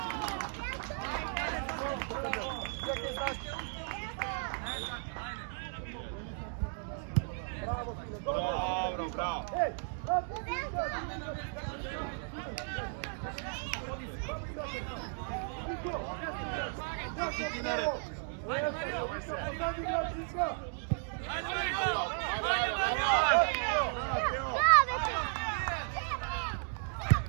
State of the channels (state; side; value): silent; left; 55 dB below the other